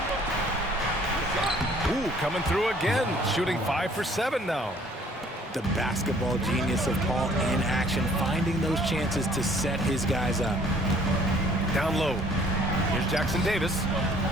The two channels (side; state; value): both; normal; correlation 0.58